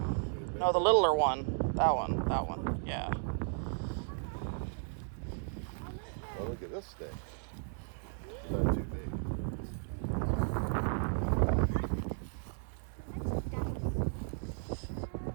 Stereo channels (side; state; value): left; silent; 55 dB below the other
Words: No, the littler one. That one. Yeah. Oh, look at this stick. Is that too big?